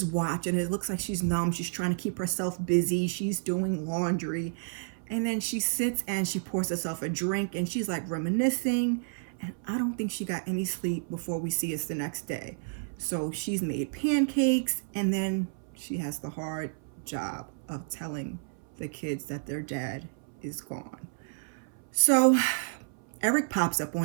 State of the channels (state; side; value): silent; left; 57 dB below the other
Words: watch, and it looks like she's numb. She's trying to keep herself busy. She's doing laundry, and then she sits and she pours herself a drink, and she's like reminiscing. And I don't think she got any sleep before we see us the next day. So she's made pancakes, and then she has the hard job of telling the kids that their dad is gone. So Eric pops up